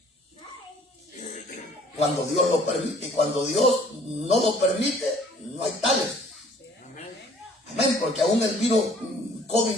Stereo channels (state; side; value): normal; both; correlation 0.55